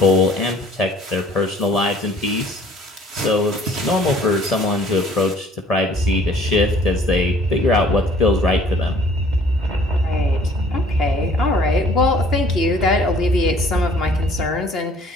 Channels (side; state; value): both; normal; correlation 0.55